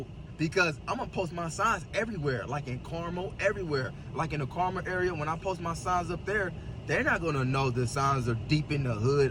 because I'm gonna post my signs everywhere, like in Carmel, everywhere. Like in the Carmel area, when I post my signs up there, they're not gonna know the signs are deep in the hood,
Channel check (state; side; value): identical; both; correlation 1.00